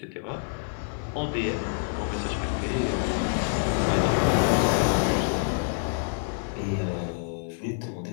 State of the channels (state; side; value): silent; right; 56 dB below the other